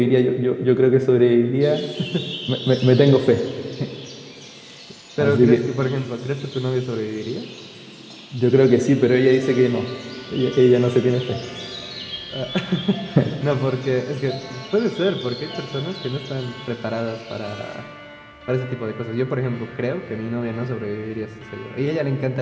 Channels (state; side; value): identical; both; correlation 1.00